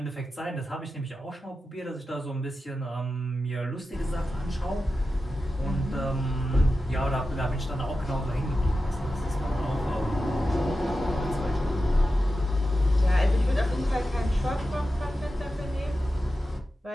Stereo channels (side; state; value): both; normal; correlation 0.92